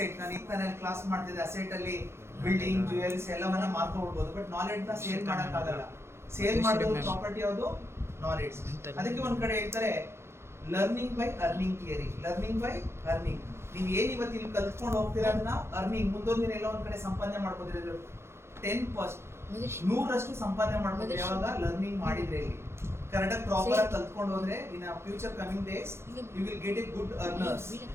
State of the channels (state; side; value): late; left; 0.12 ms